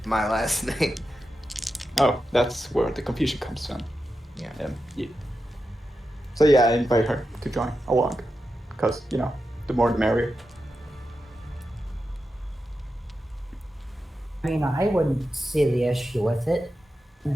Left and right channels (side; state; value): both; normal; correlation 0.90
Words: my last name. Oh, that's where the confusion comes from. Yeah. Yeah. So yeah, I invite her to join along, because the more the merrier. I mean, I wouldn't see the issue with it.